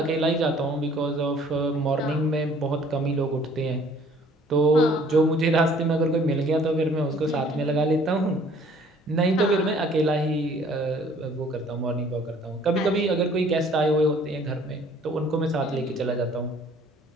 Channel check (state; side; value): normal; both; correlation 0.56